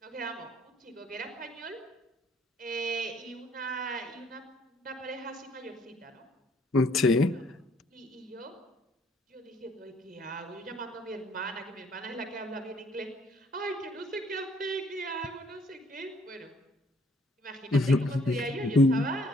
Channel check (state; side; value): normal; both; correlation 0.63